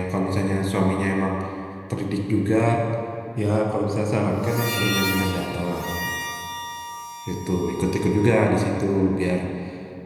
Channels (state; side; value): identical; both; correlation 1.00